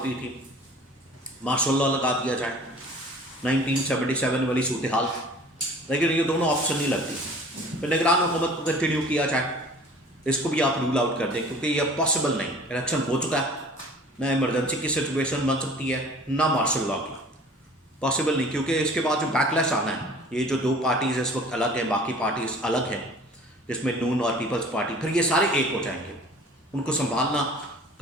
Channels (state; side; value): normal; both; correlation 0.47